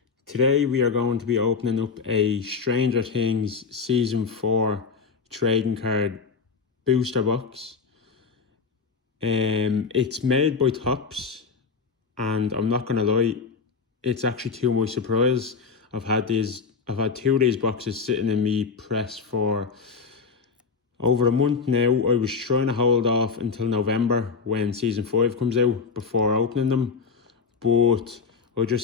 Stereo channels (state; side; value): quieter; right; 5.4 dB